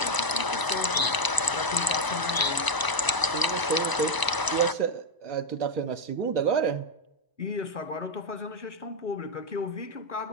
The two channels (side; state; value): right; late; 1.0 ms